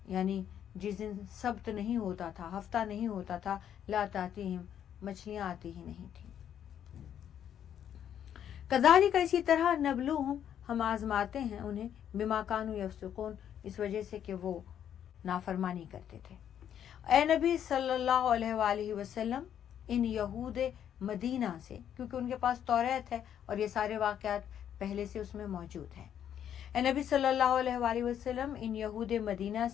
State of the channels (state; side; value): quieter; right; 9.6 dB